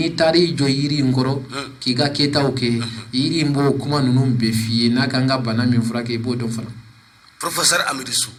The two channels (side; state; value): both; identical; correlation 1.00